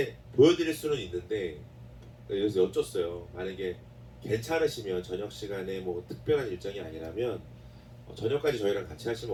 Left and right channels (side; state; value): both; identical; correlation 1.00